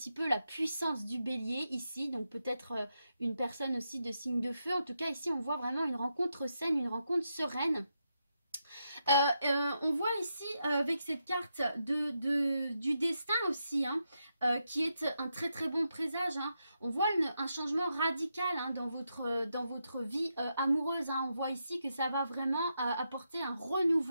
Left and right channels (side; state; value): both; inverted; correlation -0.84